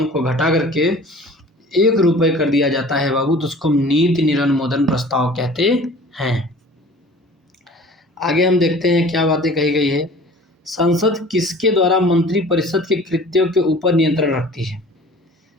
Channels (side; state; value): both; normal; correlation 0.45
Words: को घटा करके 1 रुपये कर दिया जाता है बाबू, तो उसको नीति निरनुमोदन प्रस्ताव कहते हैं। आगे हम देखते हैं क्या बातें कही गई है। संसद किसके द्वारा मंत्रिपरिषद के कृत्यों के ऊपर नियंत्रण रखती है?